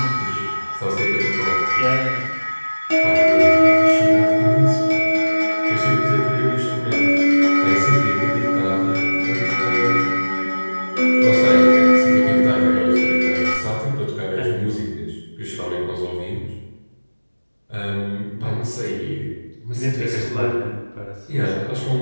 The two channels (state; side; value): inverted; both; correlation -1.00